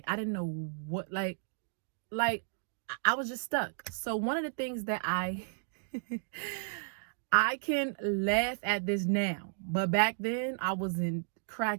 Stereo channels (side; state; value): left; silent; digital silence